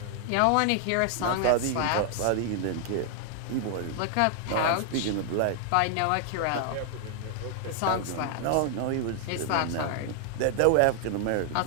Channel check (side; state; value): both; different; correlation 0.00